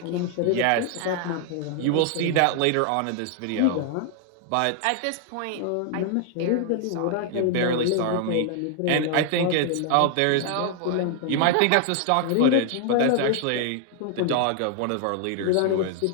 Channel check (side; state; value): both; different; correlation 0.00